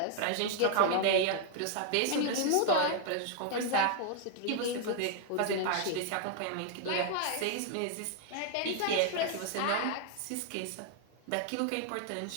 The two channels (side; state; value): both; different; correlation 0.00